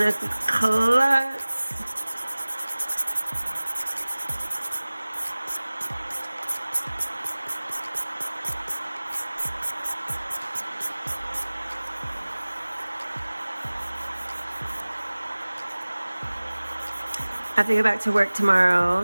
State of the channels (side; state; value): both; inverted; correlation -1.00